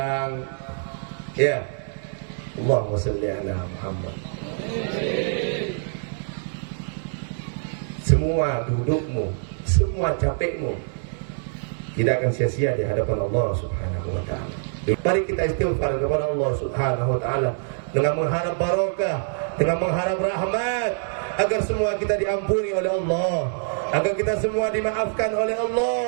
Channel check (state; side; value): silent; left; 62 dB below the other